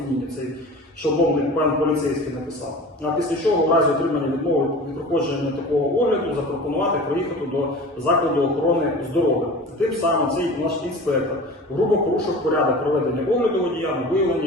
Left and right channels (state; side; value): normal; both; correlation 0.37